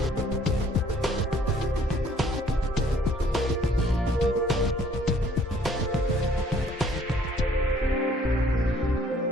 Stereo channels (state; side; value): normal; both; correlation 0.60